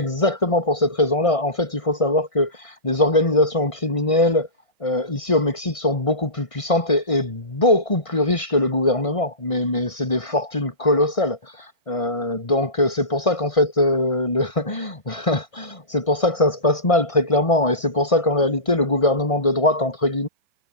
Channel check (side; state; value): right; late; 1.6 ms